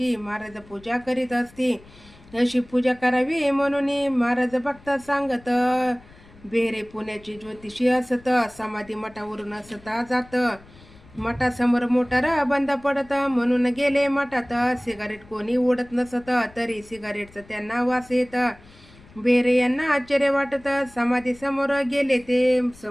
महाराज पूजा करीत असती अशी पूजा करावी म्हणून महाराज भक्त सांगत बेरे पुण्याची ज्योतिषी असत समाधी मठावरून असता जात मठासमोर मोटार बंद पडत म्हणून गेले मठात सिगारेट कोणी ओढत नसत तरी सिगारेटचं त्यांना वास येत बेरे यांना आश्चर्य वाटत समाधी समोर गेले ते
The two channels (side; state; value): left; noise; rumble, 24 dB below the sound